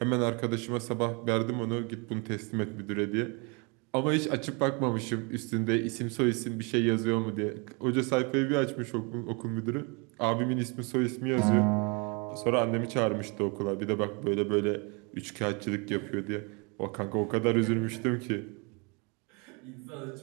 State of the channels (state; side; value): quieter; left; 31.8 dB